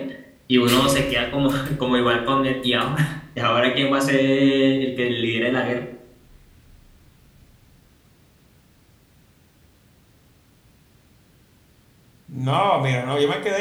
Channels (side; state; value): both; identical; correlation 1.00